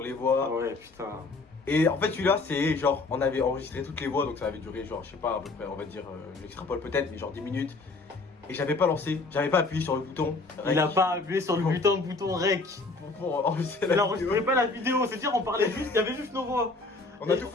les voix. Ah ouais, putain. Et en fait, celui-là, c'est genre, on avait enregistré toutes les voix, donc ça avait duré genre, je sais pas, à peu près, on va dire, j'extrapole peut-être, mais genre 10 minutes. Et j'avais pas lancé, j'avais pas appuyé sur le bouton. Il a pas appuyé sur le bouton rec. pour enregistrer Il la vidéo. enregistrait pas la vidéo, c'est-à-dire on parlait juste, il y avait juste nos voix. On a tout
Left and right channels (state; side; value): quieter; right; 3.5 dB